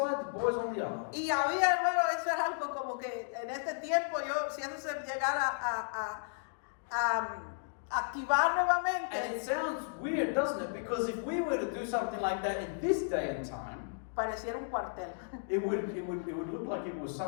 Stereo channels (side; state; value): right; silent; digital silence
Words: the boys on the other. Y había, hermano, eso era algo como que en este tiempo yo, si eso se llegara activar nuevamente. And it sounds weird, doesn't it? Because if we were to do something like that in this day and time, Pareciera un cuartel. it would look like it was